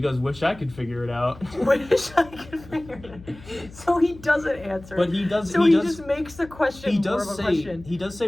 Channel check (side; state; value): left; noise; hum, 19 dB below the sound